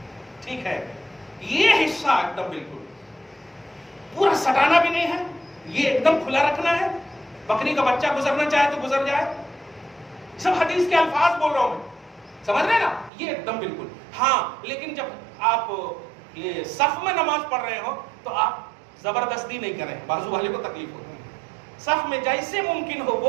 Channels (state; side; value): drops out; left; at 13.1 s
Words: ٹھیک ہے، یہ حصہ ایک دم بالکل پورا سٹانا بھی نہیں ہے. یہ ایک دم کھلا رکھنا ہے. بکری کا بچہ گزرنا چاہے تو گزر جائے. سب حدیث کے الفاظ بول رہا ہوں میں، سمجھ رہے نا؟ یہ ایک دم بالکل. ہاں لیکن جب آپ یہ صف میں نماز پڑھ رہے ہو تو آپ زبردستی نہیں کریں، بازو والے کو تکلیف ہوتی ہے. صف میں جیسے ممکن ہو